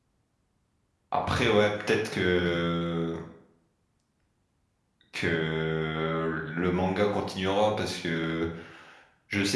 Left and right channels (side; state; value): both; identical; correlation 1.00